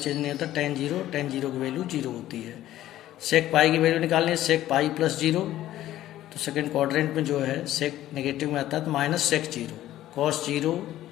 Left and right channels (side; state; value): right; quieter; 13.8 dB